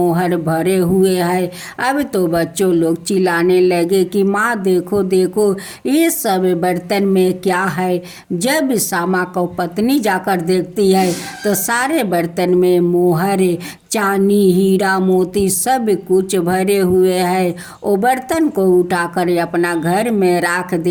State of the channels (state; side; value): identical; both; correlation 1.00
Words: भरे हुए हैं। अब तो बच्चों लोग चिल्लाने लगे कि माँ देखो देखो, ये सब बर्तन में क्या है। जब सामा को पत्नी जाकर देखती है तो सारे बर्तन में मोहर, चांदी, हीरा मोती सब कुछ भरे हुए हैं। वो बर्तन को उठाकर अपना घर में रख